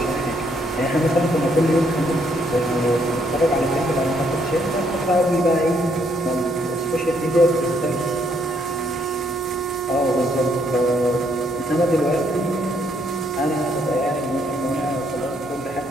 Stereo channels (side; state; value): both; normal; correlation 0.71